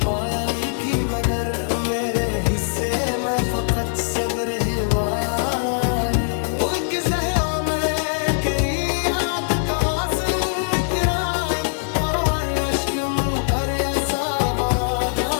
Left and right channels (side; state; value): right; silent; digital silence